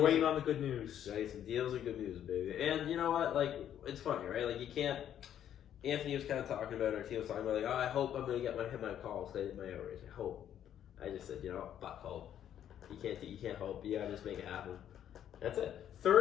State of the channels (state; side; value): quieter; right; 10.3 dB